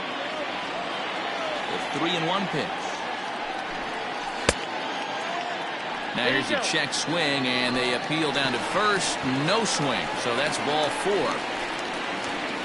The 3-1 pitch. Now here's a check swing, and they appeal down to first. No swing, so that's ball 4.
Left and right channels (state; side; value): identical; both; correlation 1.00